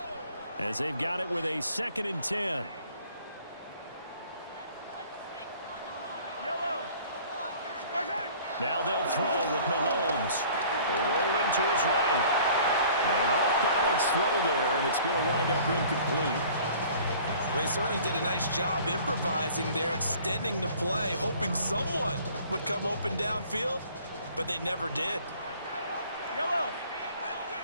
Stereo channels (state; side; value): inverted; both; correlation -0.51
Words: as they've got it with a 2nd and 10. Now they'll throw with Mahomes. Rolling to his right. An off-balance throw there, and it's going to wind up incomplete. They certainly did a nice job improvising there, extending the play, hoping someone would come open downfield, but they never did.